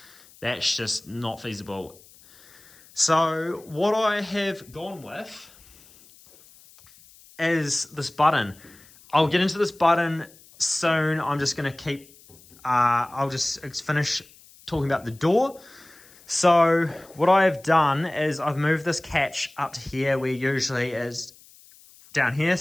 That's just not feasible. So what I have gone with is this button. I'll get into this button soon. I'm just going to keep, I'll just finish talking about the door. So what I have done is I've moved this catch up to here, where usually is down here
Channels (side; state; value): left; noise; hiss, 25 dB below the sound